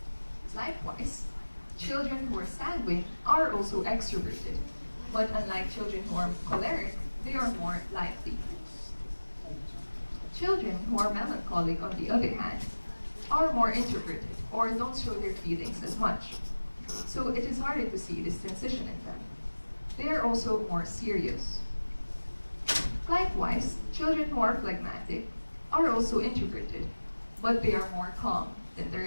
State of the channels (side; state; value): both; inverted; correlation -1.00